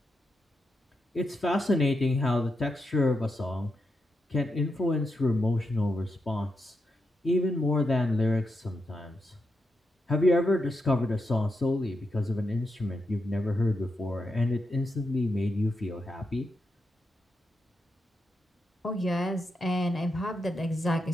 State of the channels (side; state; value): both; normal; correlation 0.85